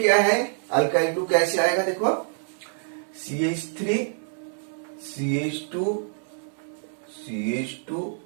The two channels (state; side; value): silent; left; 61 dB below the other